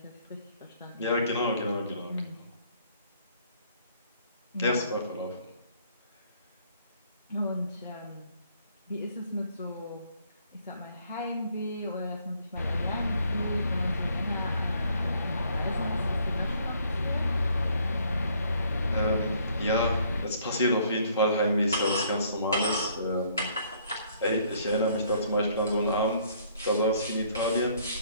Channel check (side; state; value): both; inverted; correlation -0.63